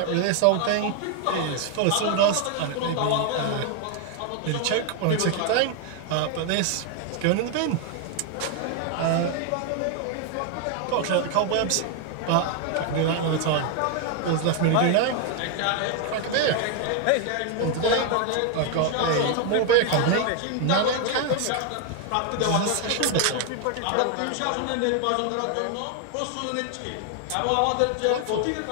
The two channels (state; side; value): different; both; correlation 0.01